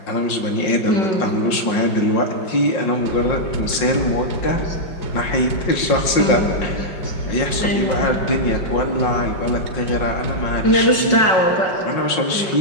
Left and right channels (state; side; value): late; right; 5.6 ms